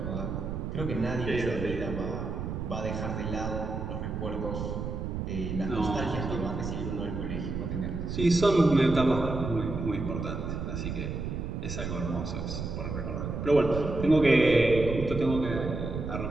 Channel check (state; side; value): noise; right; rumble, 4 dB below the sound